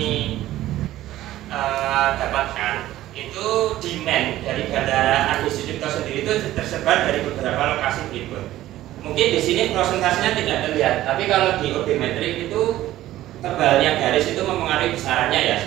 dapatkan itu demand dari bandara Adi Sucipto sendiri itu tersebar dari beberapa lokasi berikut. Mungkin di sini prosentasenya tidak terlihat, tapi kalau di odometrik itu tebalnya garis itu mempengaruhi besarannya ya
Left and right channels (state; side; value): quieter; left; 14.6 dB